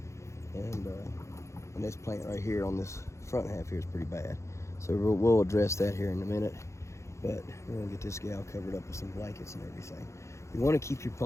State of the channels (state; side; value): late; right; 0.14 ms